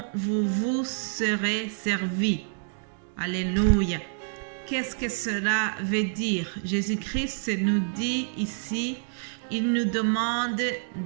vous vous serez servi. » Alléluia. Qu'est-ce que cela veut dire? Jésus-Christ nous dit ici, il nous demande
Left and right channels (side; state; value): left; silent; digital silence